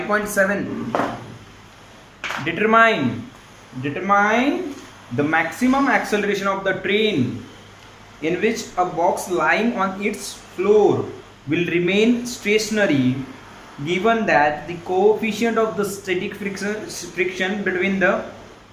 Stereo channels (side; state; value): both; identical; correlation 1.00